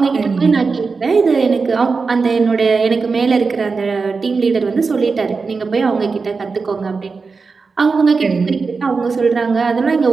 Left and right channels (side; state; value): left; quieter; 4.6 dB